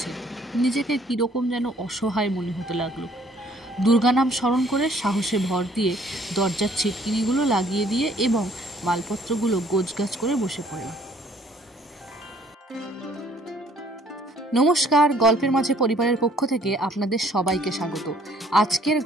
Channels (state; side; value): normal; both; correlation 0.60